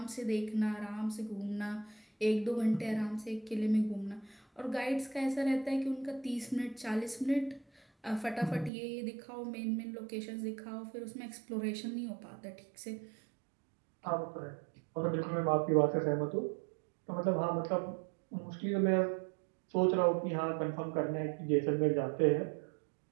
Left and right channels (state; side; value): drops out; left; at 8.7 s